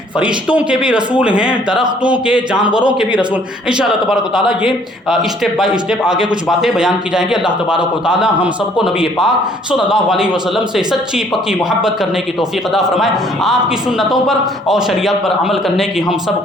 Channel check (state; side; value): normal; both; correlation 0.60